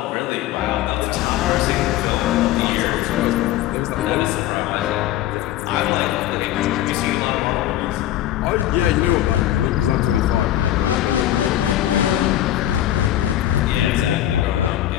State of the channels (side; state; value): right; quieter; 13.2 dB